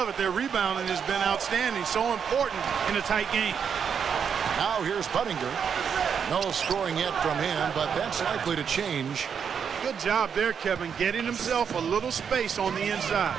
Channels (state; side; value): quieter; left; 7.2 dB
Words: it. Their rebounding has been outstanding. So important in a tight game. Now here's Buttinger. No scoring yet from him, but that's likely to change. Good job there, Kevin, getting himself a little space on the inside.